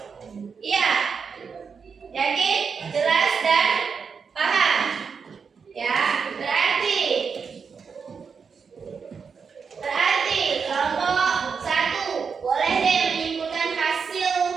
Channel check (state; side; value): quieter; left; 5.8 dB